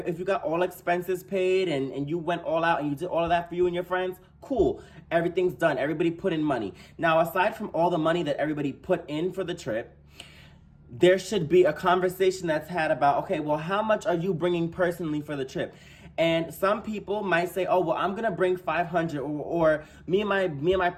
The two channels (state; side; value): identical; both; correlation 1.00